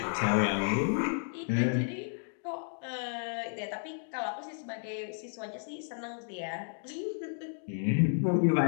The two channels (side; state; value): right; silent; digital silence